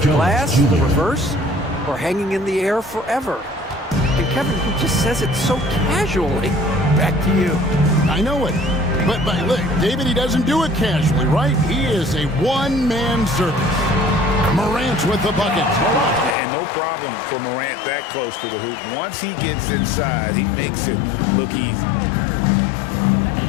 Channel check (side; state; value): right; drops out; at 16.4 s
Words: the glass, reverse, or hanging in the air forever. And Kevin, he just says it so casually. Back to you. I know it. But look, David, he doesn't do it casually, right? He is a one-man service. Morant with the bucket. And no problem for Morant that close to the hoop. Once he gets inside, he makes it look easy.